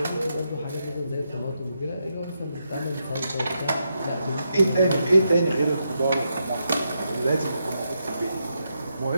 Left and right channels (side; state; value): both; inverted; correlation -0.83